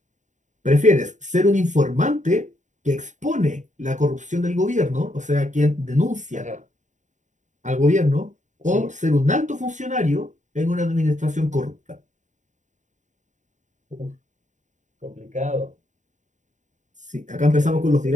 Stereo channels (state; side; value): late; left; 0.36 ms